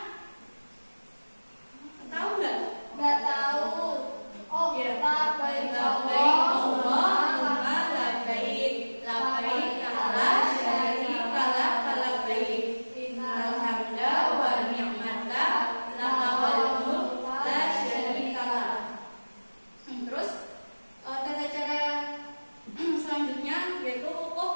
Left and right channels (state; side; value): inverted; both; correlation -1.00